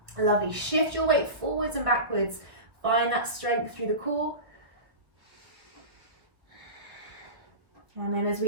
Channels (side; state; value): left; late; 1.2 ms